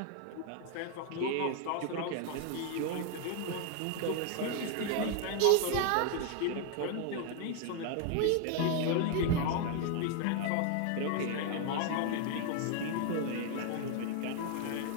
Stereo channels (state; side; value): different; both; correlation 0.01